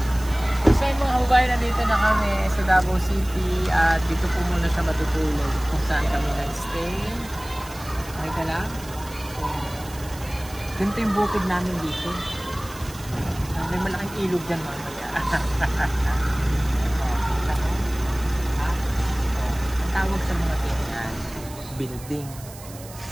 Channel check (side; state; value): right; noise; hiss, 17 dB below the sound